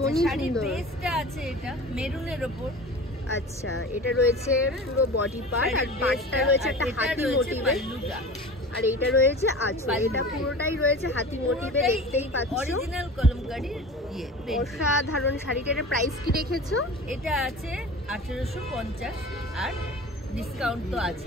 সুন্দর। বেসটা আছে এটা মেরুনের উপর। আচ্ছা, এটা রয়েছে পুরো বডি পার্ট, আর পার্টটা রয়েছে একটা হাতি মোটিভে, আর এইটা রয়েছে আঁচল। এটা পুরোটাই রয়েছে হাতি মোটিভে, দেখতেই পাচ্ছ। অরিজিনাল কলমকারি। অসাধারণ শাড়িটা। এর প্রাইস কি রেখেছো? এটা আছে 1850, আর ডিসকাউন্ট তো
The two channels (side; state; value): both; normal; correlation 0.36